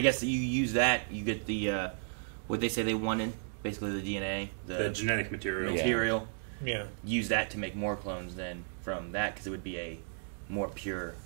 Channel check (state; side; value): silent; left; digital silence